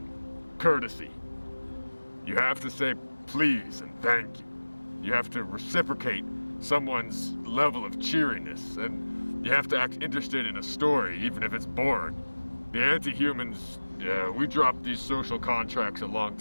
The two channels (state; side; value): inverted; both; correlation -1.00